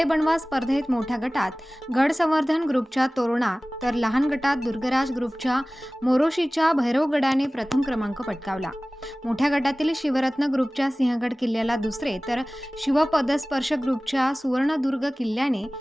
बनवा स्पर्धेत मोठ्या गटात गड संवर्धन ग्रुपच्या तोरणा तर लहान गटात दुर्गराज ग्रुपच्या मोरोशीच्या भैरवगडाने प्रथम क्रमांक पटकावला। मोठ्या गटातील शिवरत्न ग्रुपच्या सिंहगड किल्ल्याला दुसरे तर शिवपदस्पर्श ग्रुपच्या सुवर्णदुर्ग किल्ल्याने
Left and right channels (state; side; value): normal; both; correlation 0.98